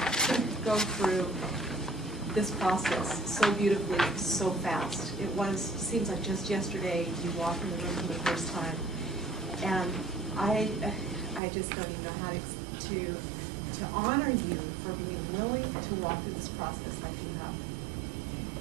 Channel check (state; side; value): drops out; left; at 11.4 s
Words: go through this process so beautifully, so fast. Seems like just yesterday you walked in the room for the first time. And I just don't even know how to honor you for being willing to walk through this process like you have.